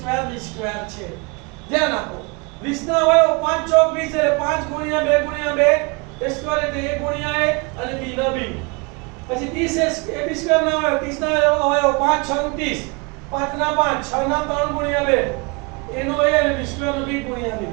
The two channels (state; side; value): quieter; left; 29.5 dB